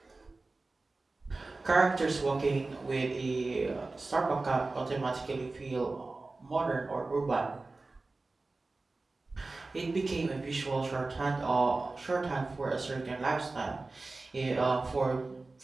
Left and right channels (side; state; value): left; quieter; 3.4 dB